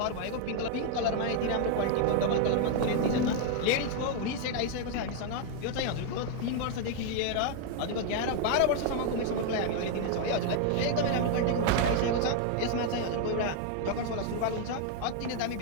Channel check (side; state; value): both; different; correlation 0.00